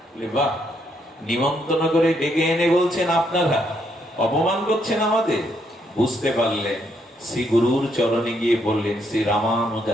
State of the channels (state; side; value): normal; both; correlation 0.74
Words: বাহ, নিমন্ত্রণ করে ডেকে এনে বলছেন আপনারা, অপমান করছেন আমাদের। বুঝতে পারলেন, শ্রী গুরুর চরণে গিয়ে বললেন, শ্রী